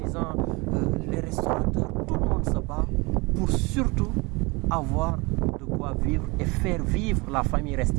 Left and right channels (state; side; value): quieter; left; 26.0 dB